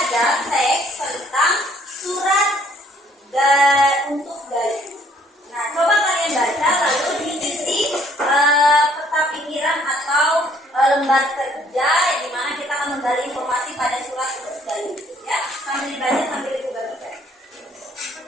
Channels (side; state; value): both; normal; correlation 0.62